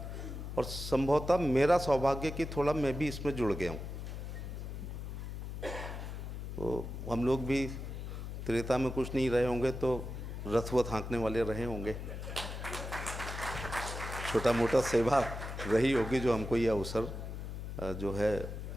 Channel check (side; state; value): left; noise; hum, 7 dB below the sound